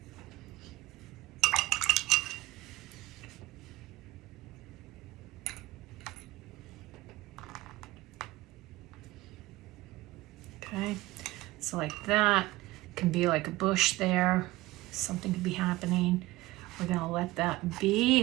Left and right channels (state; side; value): quieter; left; 18.6 dB